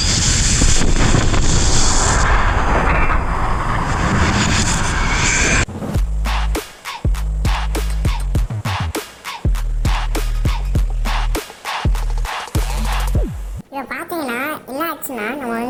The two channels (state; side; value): identical; both; correlation 1.00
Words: இப்போ பார்த்தீங்கன்னா என்ன ஆச்சுன்னா,